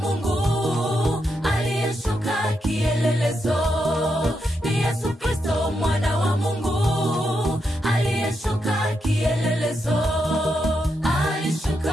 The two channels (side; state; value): both; normal; correlation 0.83